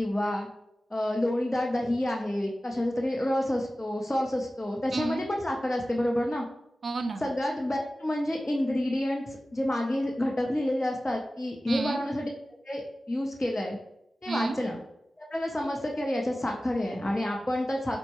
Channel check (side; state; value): both; normal; correlation 0.96